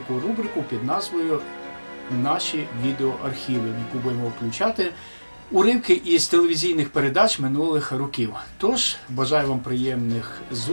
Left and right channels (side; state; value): both; inverted; correlation -1.00